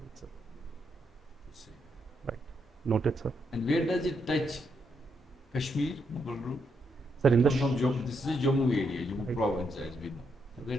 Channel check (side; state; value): both; normal; correlation 0.79